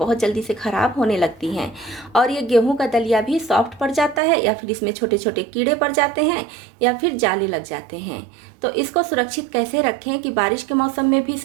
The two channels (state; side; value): drops out; left; at 4.2 s